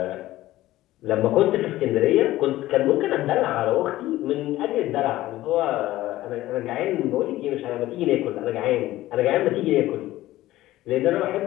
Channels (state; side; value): quieter; right; 15.9 dB